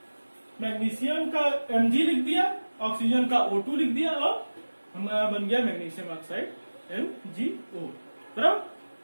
मैग्नीशियम का Mg लिख दिया ऑक्सीजन का O2 लिख दिया और हमारा बन गया मैग्नीशियम ऑक्साइड MgO बराबर।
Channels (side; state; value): both; inverted; correlation -1.00